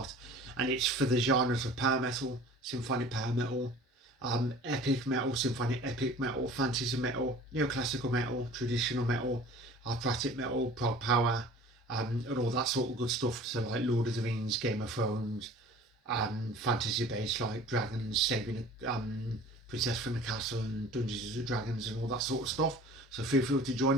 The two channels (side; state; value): both; normal; correlation 0.45